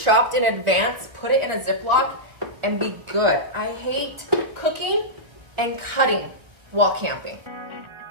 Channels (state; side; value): late; left; 1.6 ms